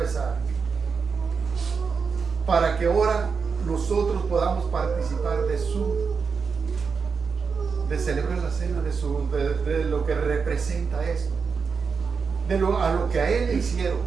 para que ahora nosotros podamos participar de celebrar la cena, de lo que representa esto, a lo que a Él le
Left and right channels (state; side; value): quieter; left; 5.4 dB